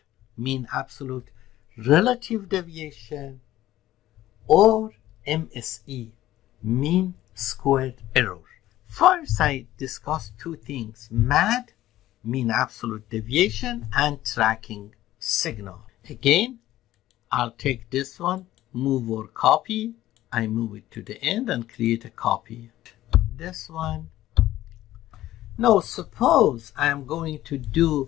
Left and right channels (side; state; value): right; quieter; 14.5 dB